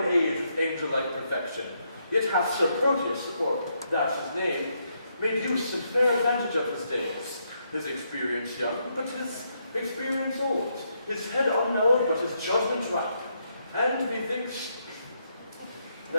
age with angel-like perfection, yet hath Sir Proteus, for that's his name, made use and fair advantage of his days, his experience young, but his experience old, his head unknowed, but his judgment ripe, and methinks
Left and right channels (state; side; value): inverted; both; correlation -0.77